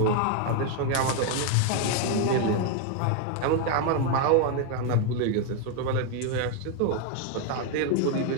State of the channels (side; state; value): both; different; correlation 0.01